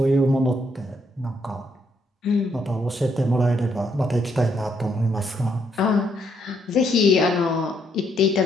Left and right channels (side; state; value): both; normal; correlation 0.74